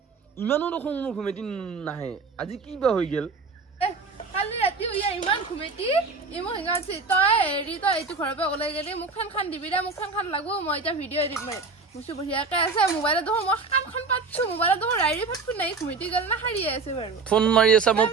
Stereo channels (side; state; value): left; quieter; 4.3 dB